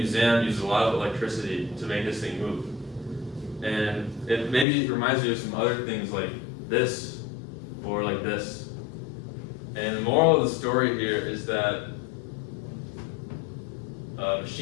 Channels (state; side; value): drops out; right; at 4.7 s